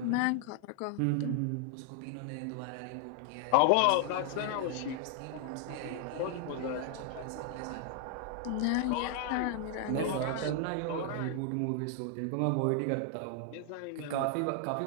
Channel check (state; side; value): different; both; correlation 0.00